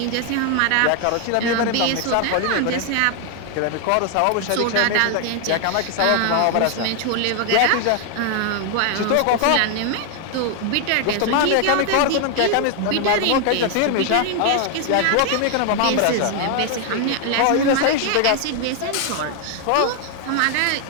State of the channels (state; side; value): different; both; correlation 0.01